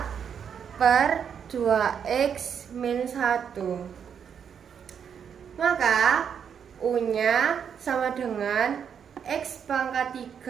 per 2x minus 1. Maka U-nya sama dengan X pangkat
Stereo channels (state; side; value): quieter; left; 7.6 dB